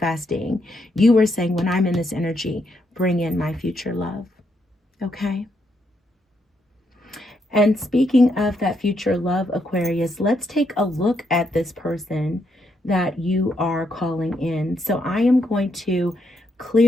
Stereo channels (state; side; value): normal; both; correlation 0.78